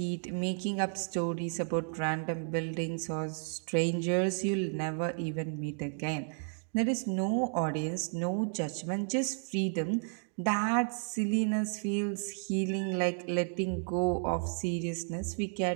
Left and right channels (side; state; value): left; silent; 55 dB below the other